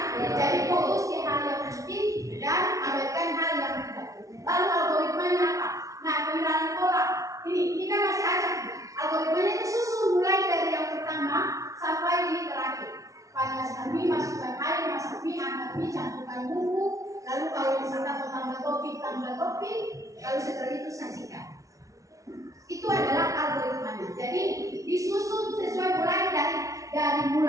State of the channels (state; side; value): late; left; 0.16 ms